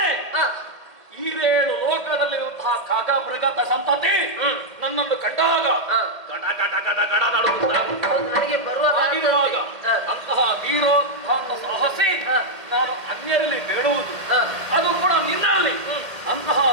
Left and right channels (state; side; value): late; left; 1.8 ms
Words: ಈರೇಳು ಲೋಕದಲ್ಲಿರುವಂತಹ ಕಾಗ ಮೃಗದ ಸಂತತಿ ನನ್ನನ್ನು ಕಂಡಾಗ ಗಡ ಗಡ ಗಡ ಗಡ ನಡುಗುತ್ತಾರೆ. ಹೌದು, ನನಗೆ ಬರುವ ಹಾಗಿರುವಾಗ ಅಂತಹ ವೀರೋತ್ಥಾನ ಸಾಹಸಿ ನಾನು ಅನ್ಯರಲ್ಲಿ ಬೇಡುವುದು, ಅದು ಕೂಡ ನಿನ್ನಲ್ಲಿ. ಅಂತಹ